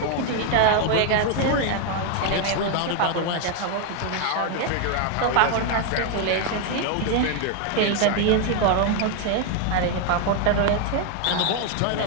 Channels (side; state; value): both; different; correlation 0.01